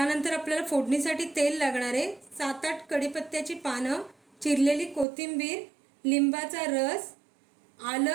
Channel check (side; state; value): left; drops out; at 5.1 s